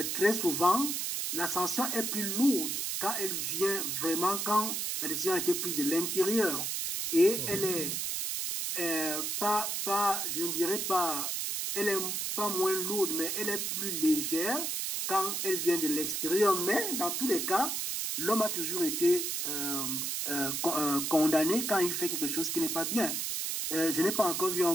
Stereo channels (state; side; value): noise; right; hiss, 1 dB below the sound